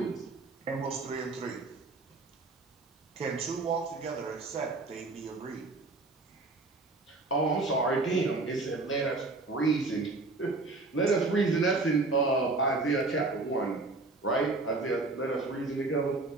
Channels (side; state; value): left; quieter; 3.4 dB